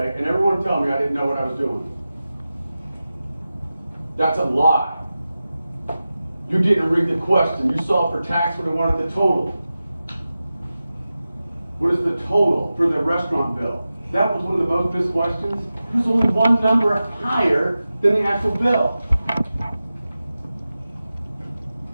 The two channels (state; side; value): inverted; both; correlation -0.94